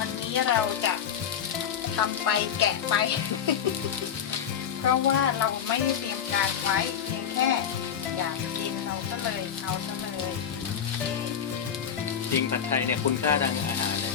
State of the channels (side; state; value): right; quieter; 8.4 dB